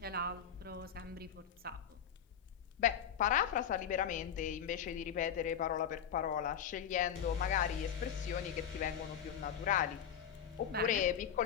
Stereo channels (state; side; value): quieter; right; 8.6 dB